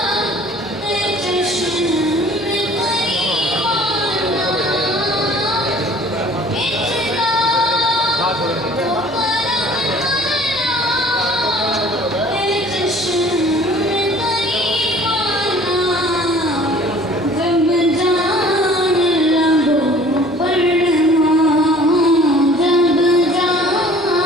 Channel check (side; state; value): both; normal; correlation 0.51